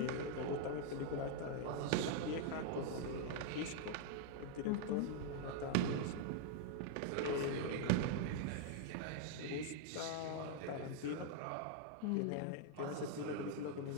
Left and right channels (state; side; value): different; both; correlation 0.00